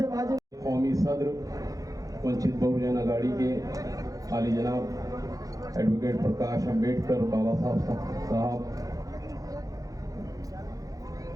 माजी कौमी सदर वंचित बहुजन आघाड़ी के आली जनाब एडवोकेट प्रकाश अम्बेडकर बाला साहब,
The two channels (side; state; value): left; late; 0.17 ms